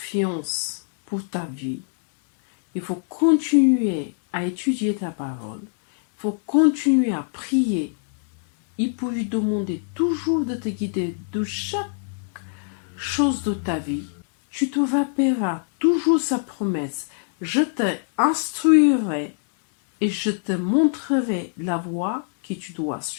pour ta vie, il faut continuer à étudier ta parole, il faut continuer à prier. Il faut lui demander toujours de te guider de chaque chose de ta vie. Tu te rappelleras toujours sa promesse. Je te instruirai et je te montrerai la voie que tu dois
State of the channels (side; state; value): right; silent; digital silence